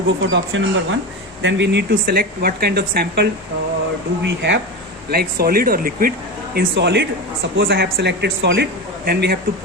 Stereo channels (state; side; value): normal; both; correlation 0.22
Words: go for the option number 1. Then we need to select what kind of sample do we have, like solid or liquid. In solid, suppose I have selected solid, then we have to